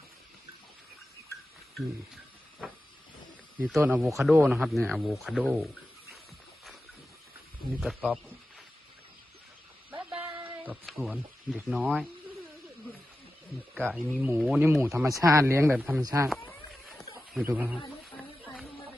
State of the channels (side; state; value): both; normal; correlation 0.93